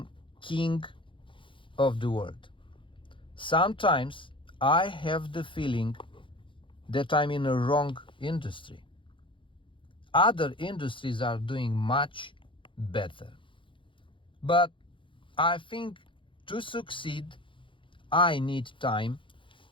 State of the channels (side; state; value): right; late; 0.25 ms